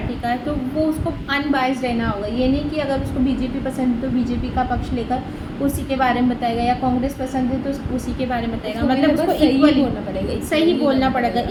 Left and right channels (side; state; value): both; identical; correlation 1.00